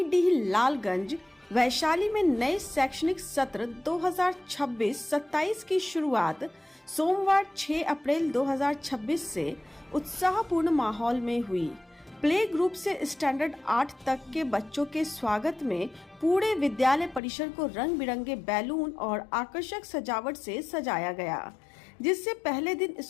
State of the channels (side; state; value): right; drops out; at 17.2 s